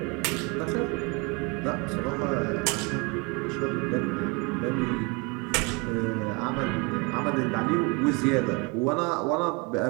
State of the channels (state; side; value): quieter; left; 29.0 dB